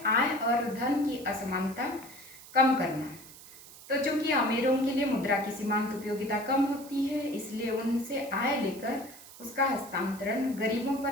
आय और धन की असमानता कम करना। तो चूंकि अमीरों के लिए मुद्रा की सीमांत उपयोगिता कम होती है, इसलिए उनसे आय लेकर उसका हस्तांतरण गरीबों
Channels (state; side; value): noise; right; hiss, 18 dB below the sound